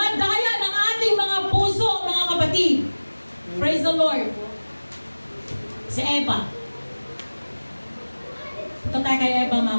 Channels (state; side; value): inverted; both; correlation -1.00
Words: ng ating mga puso, mga kapatid. Praise the Lord. Si Eva. Ito tayo kay Eva,